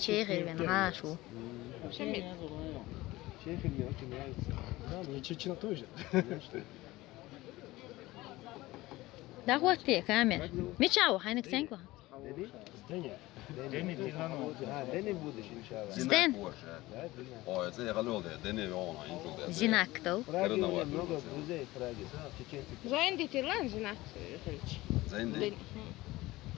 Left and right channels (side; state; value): right; quieter; 18.9 dB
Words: нашу. Чехия мне очень нравится. Да, мне Чечня тоже. Да вот ты, камер. Мечау, хайнек сенку. Deni? Здание. Deni Dinamo. Ha, Deni будешь, иншалла. Стэн. Да, Deni. Ой, це я галюде, де не вона, інтуде. Зинак то. В Праге у Карнавал. меня много друзей в Праге. Чеченцы. Zijn dit lan zinak? Зенди.